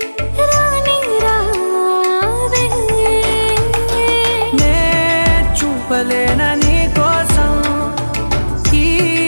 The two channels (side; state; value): both; inverted; correlation -1.00